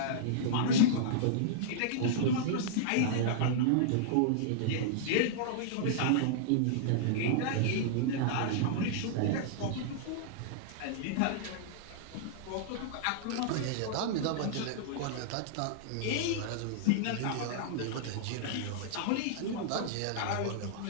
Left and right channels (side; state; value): both; different; correlation -0.02